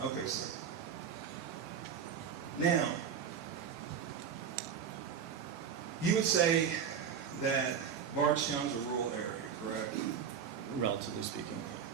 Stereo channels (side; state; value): left; quieter; 7.5 dB